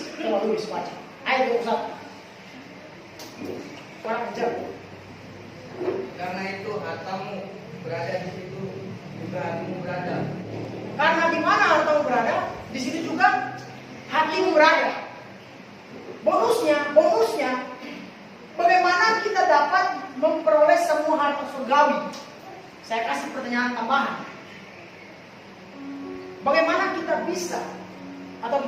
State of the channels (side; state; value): both; identical; correlation 1.00